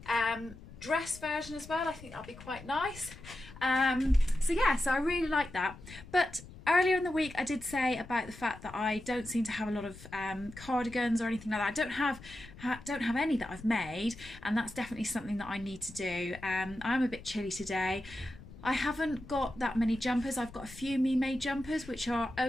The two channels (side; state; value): left; noise; rumble, 17 dB below the sound